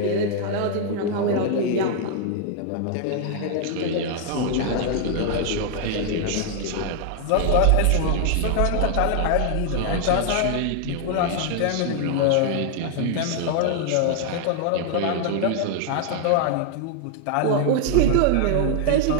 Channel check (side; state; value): both; different; correlation 0.00